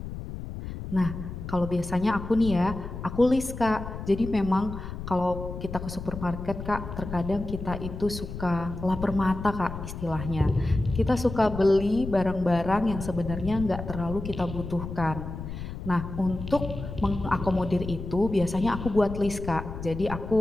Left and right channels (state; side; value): noise; left; rumble, 8 dB below the sound